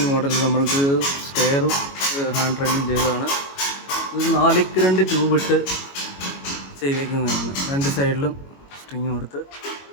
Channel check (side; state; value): right; late; 22 ms